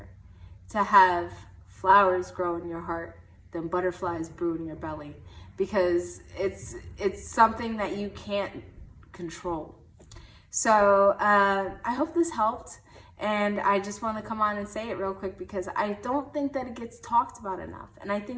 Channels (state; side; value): identical; both; correlation 1.00